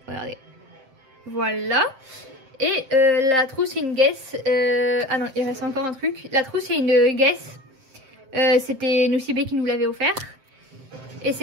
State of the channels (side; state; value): left; late; 7.6 ms